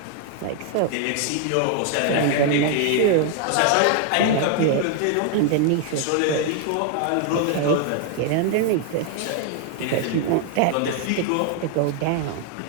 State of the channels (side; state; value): both; different; correlation 0.00